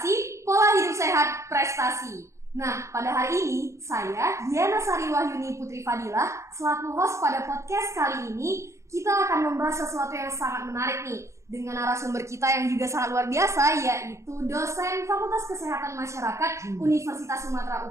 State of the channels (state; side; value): late; left; 0.14 ms